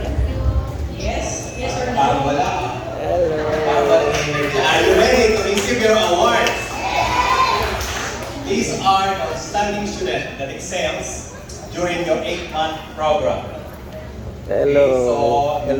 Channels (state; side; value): identical; both; correlation 1.00